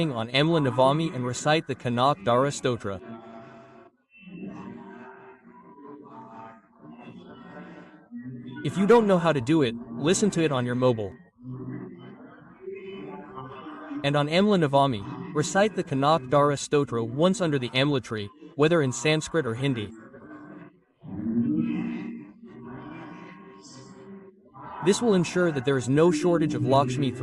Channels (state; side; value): identical; both; correlation 1.00